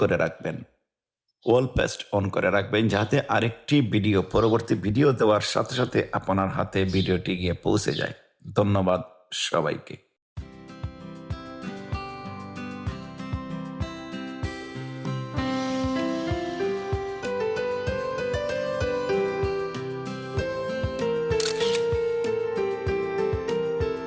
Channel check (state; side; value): identical; both; correlation 1.00